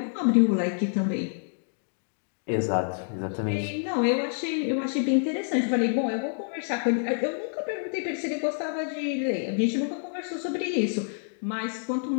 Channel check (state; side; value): silent; right; digital silence